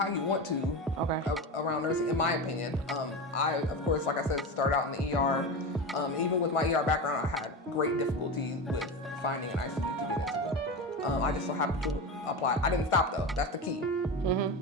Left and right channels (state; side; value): normal; both; correlation 0.23